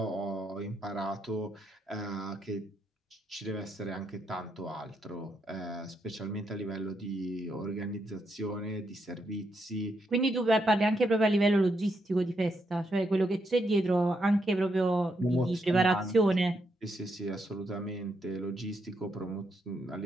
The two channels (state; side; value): normal; both; correlation 0.79